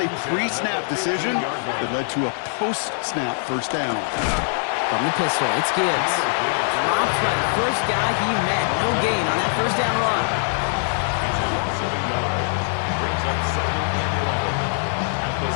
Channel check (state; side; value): silent; right; 64 dB below the other